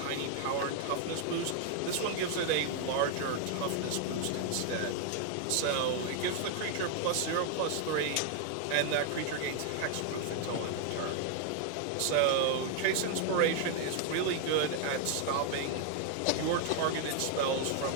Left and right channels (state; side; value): different; both; correlation 0.00